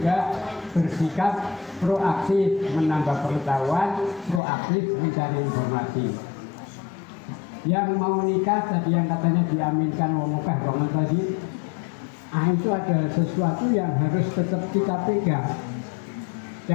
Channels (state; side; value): drops out; right; at 4.4 s